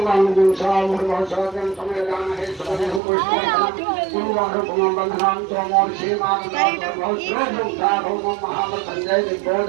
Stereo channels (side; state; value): left; drops out; at 3.0 s